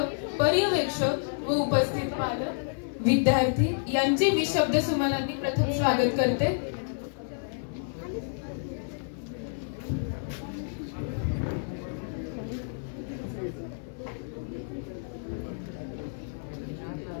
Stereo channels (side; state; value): right; silent; 55 dB below the other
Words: पर्यवेक्षक व उपस्थित पालक, विद्यार्थी यांचे मी शब्द सुमनांनी प्रथम स्वागत करते.